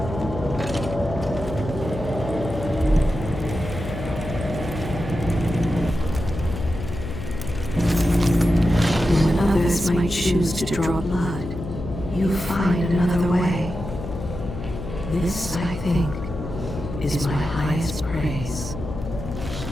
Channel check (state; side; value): noise; left; hum, 8 dB below the sound